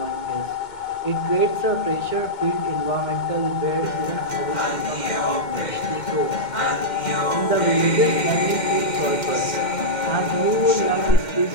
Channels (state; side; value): late; right; 2.2 ms